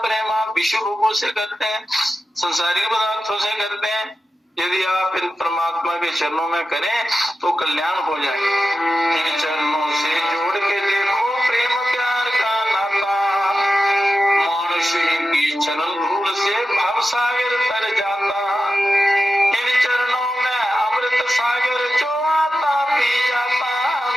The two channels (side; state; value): both; normal; correlation 0.92